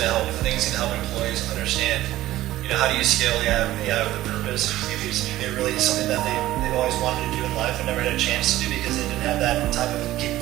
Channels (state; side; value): quieter; left; 15.3 dB